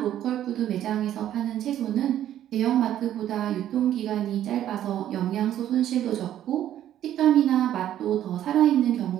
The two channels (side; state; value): left; quieter; 11.6 dB